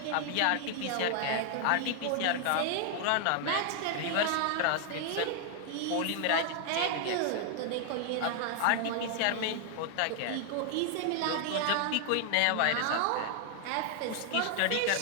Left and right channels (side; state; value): both; different; correlation 0.00